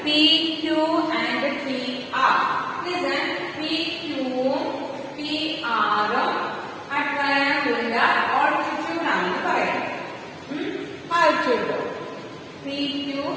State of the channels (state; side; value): identical; both; correlation 1.00